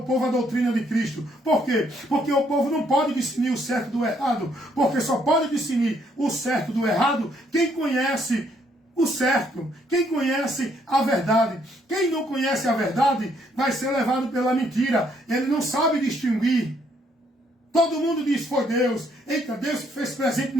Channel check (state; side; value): normal; both; correlation 0.69